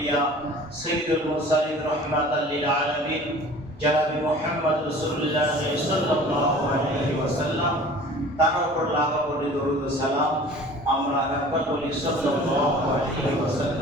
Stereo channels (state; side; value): normal; both; correlation 0.45